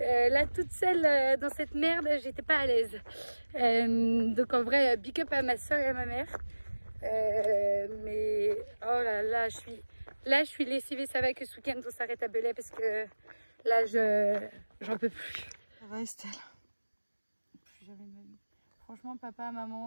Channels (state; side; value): inverted; both; correlation -1.00